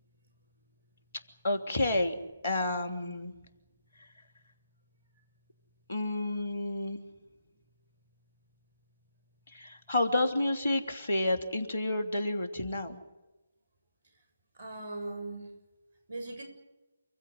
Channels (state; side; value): inverted; both; correlation -0.82